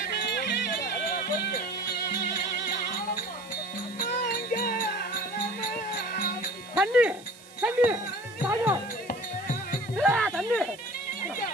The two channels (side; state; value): right; noise; hiss, 22 dB below the sound